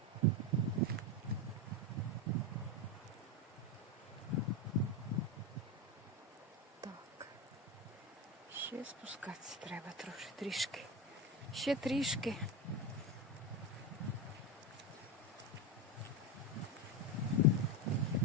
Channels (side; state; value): both; normal; correlation 0.14